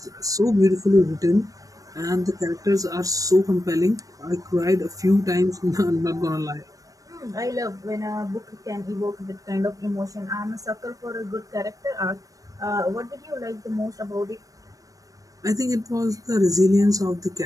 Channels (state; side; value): late; left; 0.16 ms